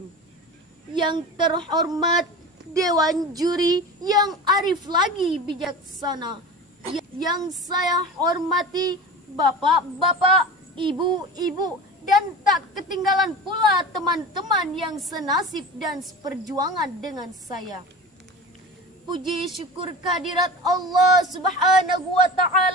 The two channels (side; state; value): both; normal; correlation 0.33